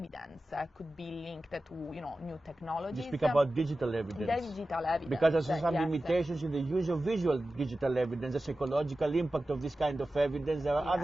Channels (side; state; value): both; normal; correlation 0.94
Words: could be linked to new technologies. You speak about digital evidence. Digital evidence. Because there's some limitations in the use of visual digital evidence, the psychological impact of this kind of evidence. There are